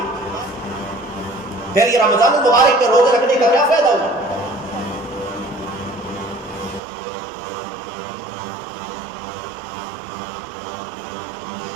پھر یہ رمضان المبارک کے روزے رکھنے کا کیا فائدہ ہوا؟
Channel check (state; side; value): drops out; left; at 6.8 s